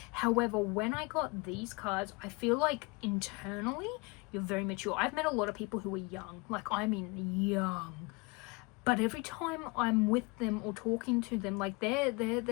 However, when I got these cards, I feel like internally you're very mature. I've met a lot of people who are young, like, I mean young, but every time I'm with them or talking to them, like, they're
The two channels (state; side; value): quieter; right; 27.7 dB